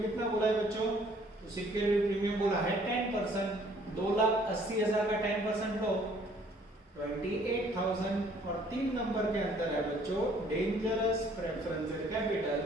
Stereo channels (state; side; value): normal; both; correlation 0.60